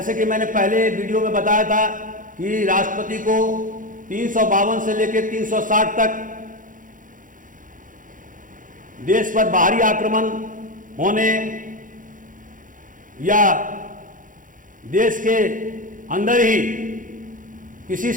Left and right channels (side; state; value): left; late; 0.39 ms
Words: कि मैंने पहले वीडियो में बताया था कि राष्ट्रपति को 352 से लेकर 360 तक देश पर बाहरी आक्रमण होने या देश के अंदर ही किसी